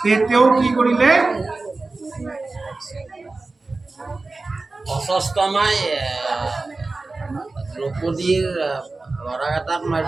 তেওঁ কি কৰিলে, অস্বস্থমাই দ্ৰৌপদীৰ ল'ৰাকেইটাক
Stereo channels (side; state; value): left; quieter; 3.5 dB